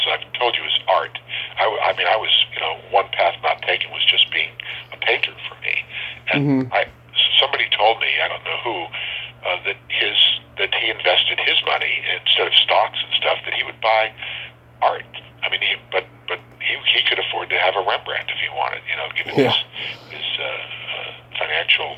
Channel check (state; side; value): identical; both; correlation 1.00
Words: I've told you, is art. I was, one path not taken was just being a painter for me. And somebody told me, I don't know who, that he invested his money instead of stocks and stuff, that he would buy art. I mean, but he could afford to have a Rembrandt if he wanted, given his